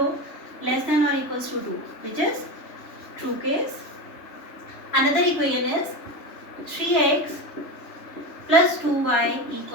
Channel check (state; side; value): late; right; 3.4 ms